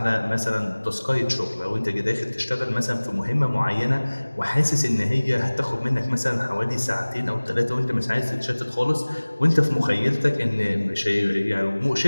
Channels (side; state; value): both; inverted; correlation -1.00